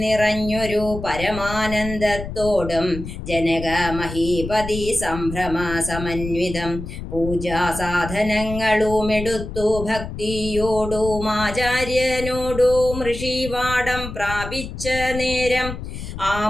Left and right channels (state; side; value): noise; left; rumble, 9 dB below the sound